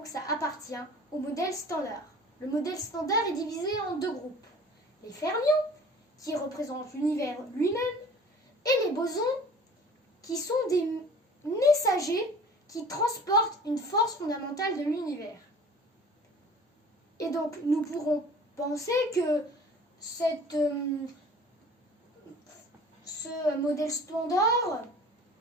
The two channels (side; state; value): both; normal; correlation 0.46